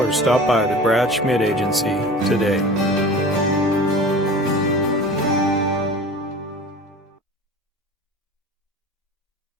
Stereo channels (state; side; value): normal; both; correlation 0.38